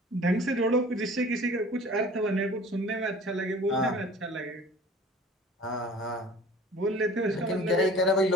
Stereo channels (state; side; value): normal; both; correlation 0.45